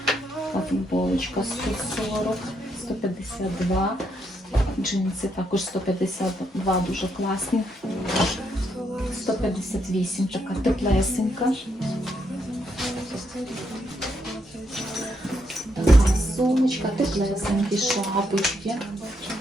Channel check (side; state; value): both; normal; correlation 0.77